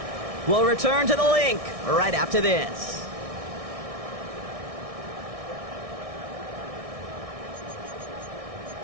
We'll return to the link right after this.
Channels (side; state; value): left; late; 1.6 ms